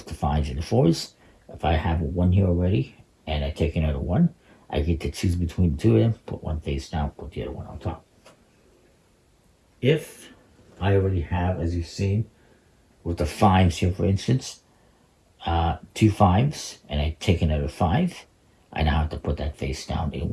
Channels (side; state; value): both; identical; correlation 1.00